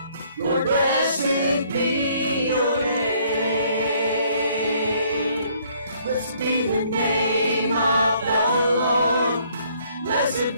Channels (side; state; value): both; inverted; correlation -0.64